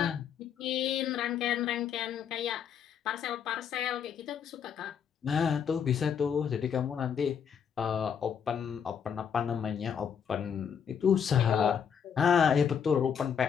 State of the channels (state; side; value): quieter; right; 7.5 dB